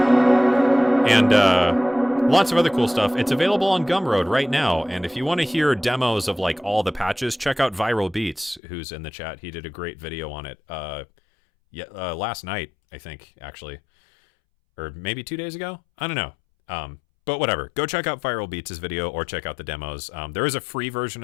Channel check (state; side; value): drops out; right; at 8.6 s